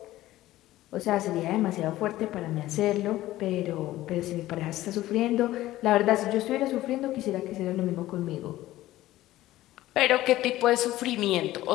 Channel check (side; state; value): right; quieter; 15.7 dB